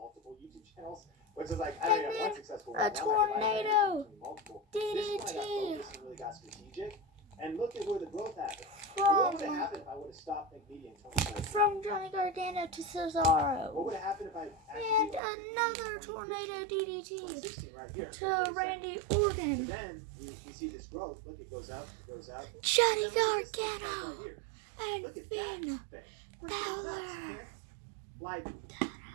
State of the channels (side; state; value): left; drops out; at 15.2 s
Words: YouTube channels, which is I don't have one successful one. A tornado. DDT. This one I got focused and really got strategic. And look at where the growth happened. What would have happened if I would have stopped Think Media in 2014? From Johnny Gargano to Cesaro. What would have happened if I and another tornado DDT right here, to Randy Orton. Then we see this growth. Look, it goes up, it goes up. Johnny Gargano and Finn Balor. Like